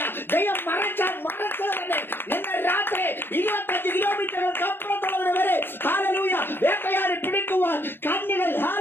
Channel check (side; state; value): right; late; 0.10 ms